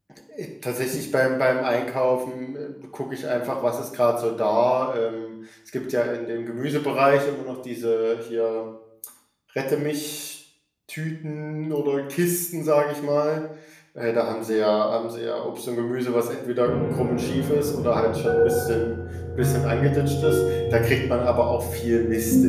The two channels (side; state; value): both; identical; correlation 1.00